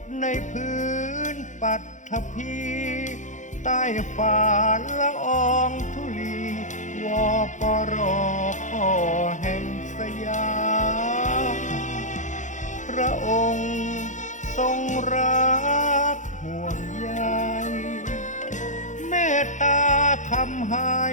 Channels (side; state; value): right; late; 0.36 ms